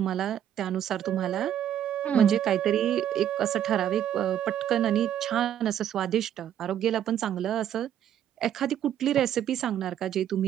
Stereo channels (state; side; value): quieter; left; 10.4 dB